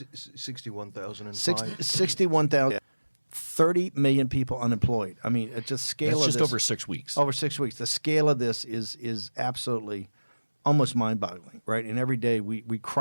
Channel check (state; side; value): inverted; both; correlation -1.00